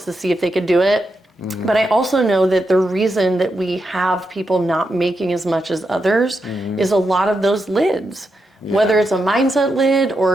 to see if they could do it. But I also know that the reason that we have people not making as much as others is a lot of those lids. Whether it's a mindset lid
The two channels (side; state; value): both; normal; correlation 0.85